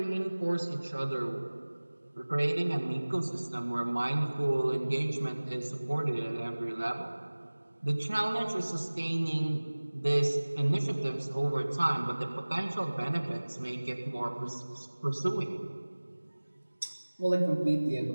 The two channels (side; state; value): both; inverted; correlation -1.00